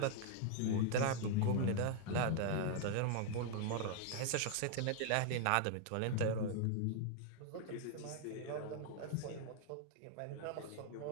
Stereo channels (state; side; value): different; both; correlation 0.00